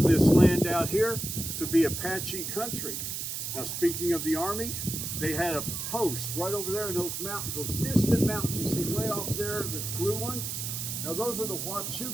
this land out here to be Apache country. Now, speaking of the Army, they had a post right over there in those mountains, those distant mountains you see way off there, the blue ones. Now, those are the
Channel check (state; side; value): noise; right; hiss, 4 dB below the sound